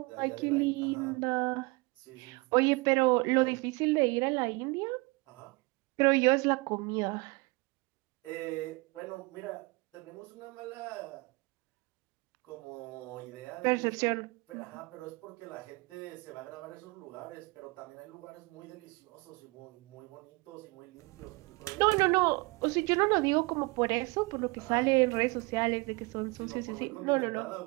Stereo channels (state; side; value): quieter; left; 26.2 dB